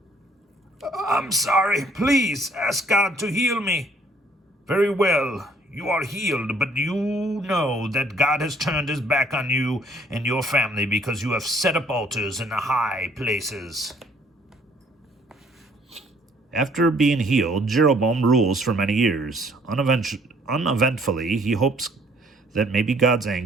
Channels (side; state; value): both; normal; correlation 0.61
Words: I'm sorry. Please ask God to heal me. Very well. You are healed, but you know that God has turned his back on you and your family because you have set up altars in the high places. After being healed, Jeroboam rules for many years. Uneventfully, he hopes that maybe God's